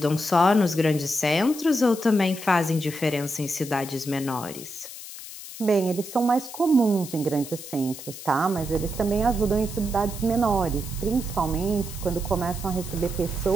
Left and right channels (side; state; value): left; noise; hiss, 13 dB below the sound